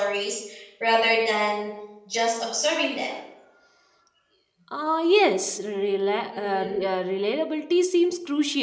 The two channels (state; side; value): identical; both; correlation 1.00